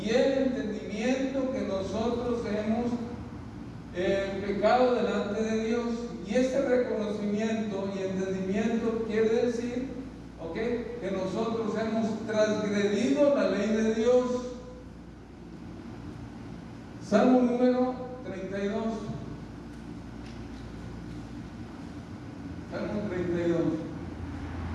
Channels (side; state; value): both; identical; correlation 1.00